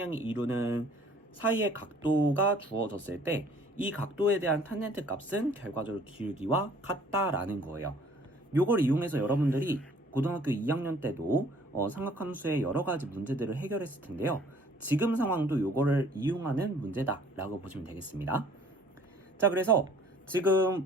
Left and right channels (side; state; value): both; normal; correlation 0.55